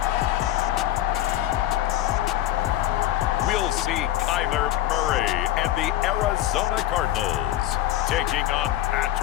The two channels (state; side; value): quieter; right; 13.4 dB